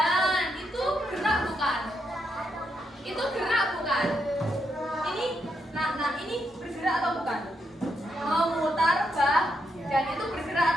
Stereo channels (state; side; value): normal; both; correlation 0.80